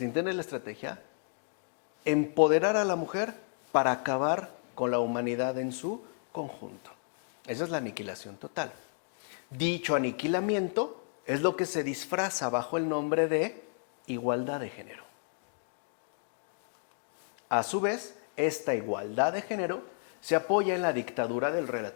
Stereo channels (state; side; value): silent; right; digital silence